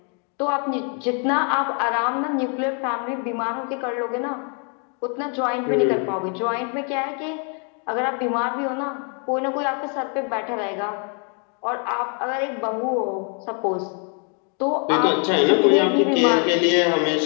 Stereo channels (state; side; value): quieter; right; 39.6 dB